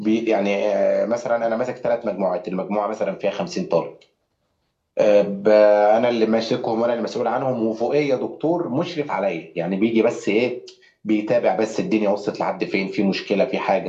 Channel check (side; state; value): both; identical; correlation 1.00